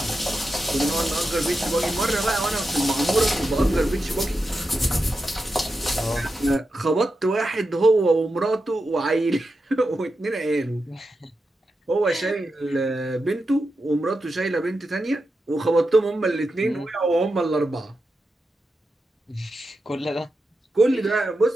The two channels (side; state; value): both; normal; correlation 0.89